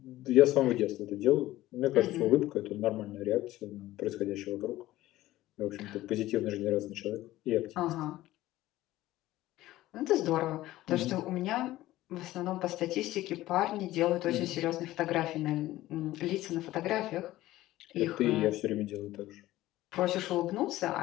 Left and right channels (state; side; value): quieter; right; 16.0 dB